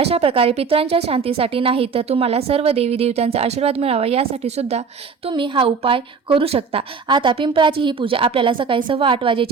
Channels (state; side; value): quieter; left; 5.4 dB